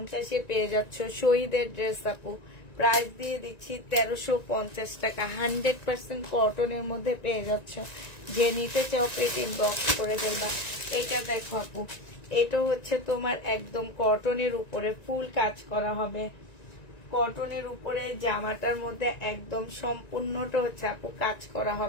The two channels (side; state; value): right; late; 1.9 ms